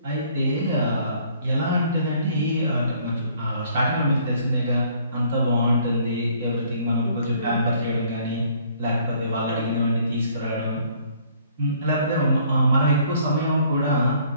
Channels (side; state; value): both; inverted; correlation -0.60